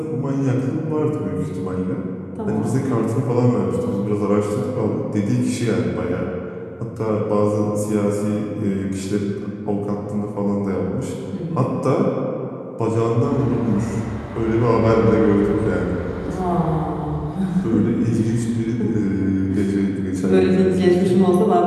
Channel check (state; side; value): identical; both; correlation 1.00